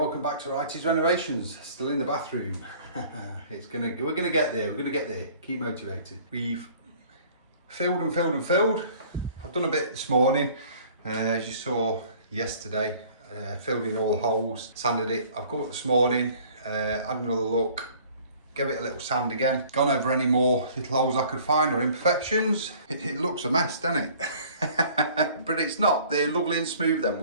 back to Righty's Renovations. Still in the bathroom. We're gonna get there. Keep motivated. We've filled. I've done a bit this morning, as you saw yesterday. Filled in all the holes, sanded it. I've got up this morning, had another look. Give it a little sand again. Gone over any more little holes I could find or imperfections. It looks a mess, doesn't it? But it's not. They're lovely and smooth, them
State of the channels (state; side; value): inverted; both; correlation -0.52